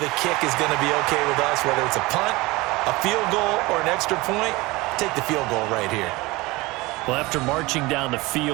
a kick is going to be okay with us, whether it's a punt, a field goal, or an extra point. Take the field goal right here. Well, after marching down the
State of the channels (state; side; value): quieter; left; 22.0 dB